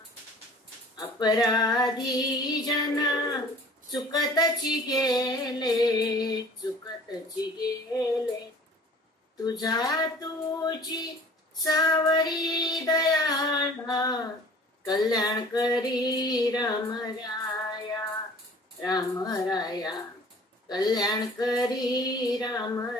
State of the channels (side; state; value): both; normal; correlation 0.48